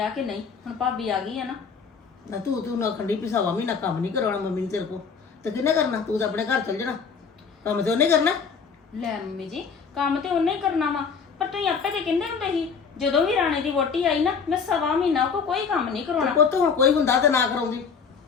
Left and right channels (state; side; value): quieter; right; 5.8 dB